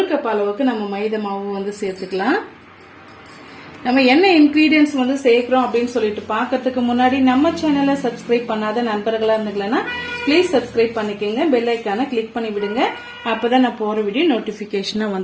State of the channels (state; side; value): identical; both; correlation 1.00